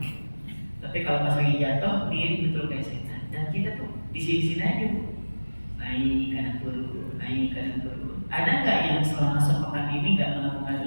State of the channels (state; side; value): inverted; both; correlation -1.00